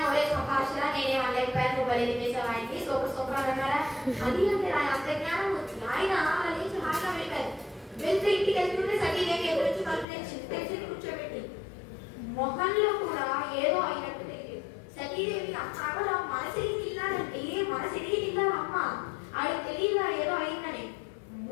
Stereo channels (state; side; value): drops out; right; at 10.1 s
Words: ఒరే సభాషరా నేనే వాళ్ళైపోయాను బలి వేసావు ఆయనకి సూపర్ అన్నారా, అది అంటే ఆయన అంత జ్ఞానం వచ్చింది. ఆయన అలా లేచి హాయిగా వెళ్ళారు. వెళ్తే ఇంటికి వెళ్తుంటే సతీదేవి ఎదురొచ్చి తెలిసి కూర్చోబెట్టి మొహంలో కూడా ఏదో అయినట్టు తెలియదు. సతీదేవి అక్కడ మనసిరిగి తిన్నాడంటే మనసిరిగి తిన్నారు అమ్మ, ఆడికి తెలియదా ఏదో అయిందని.